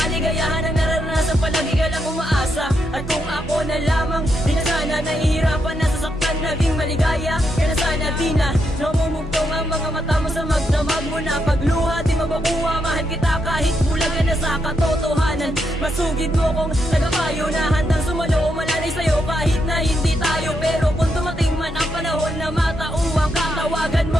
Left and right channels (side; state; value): both; normal; correlation 0.81